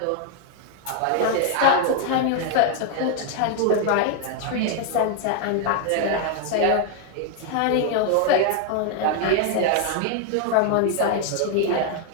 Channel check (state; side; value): different; both; correlation 0.00